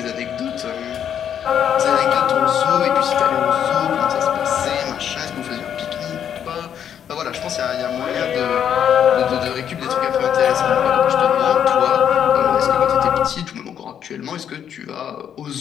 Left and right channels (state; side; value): quieter; right; 8.9 dB